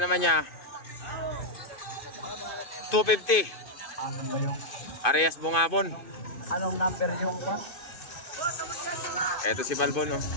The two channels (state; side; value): late; right; 2.5 ms